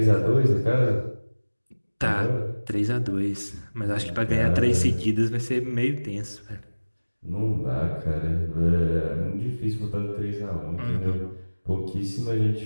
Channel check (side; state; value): both; inverted; correlation -1.00